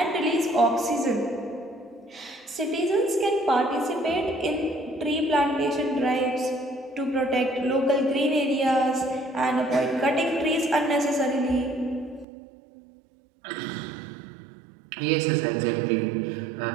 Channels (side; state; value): left; drops out; at 12.2 s